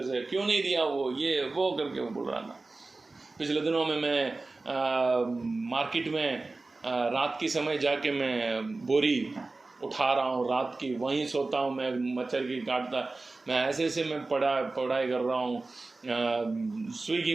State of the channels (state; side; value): quieter; left; 3.4 dB